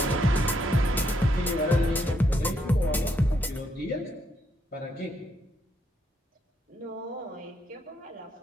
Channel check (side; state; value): both; normal; correlation 0.76